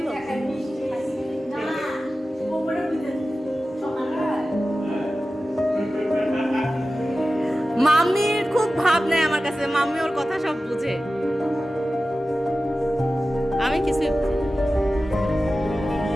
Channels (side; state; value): both; normal; correlation 0.95